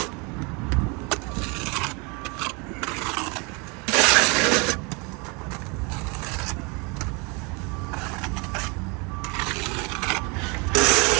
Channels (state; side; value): quieter; left; 30.3 dB